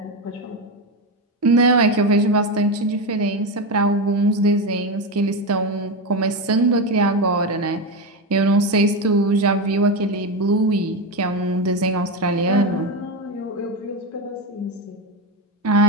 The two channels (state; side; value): normal; both; correlation 0.14